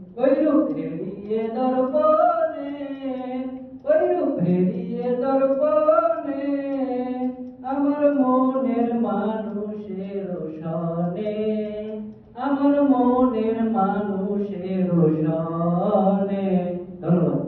ওই রূপ হেরিয়ে দর্পণে, ওই রূপ হেরিয়ে দর্পণে, আমার মনের মানুষের সনে, আমার মনের মানুষের সনে। ধন্যবাদ।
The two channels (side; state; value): both; identical; correlation 1.00